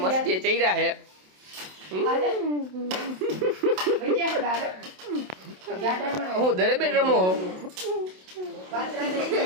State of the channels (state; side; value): late; left; 27 ms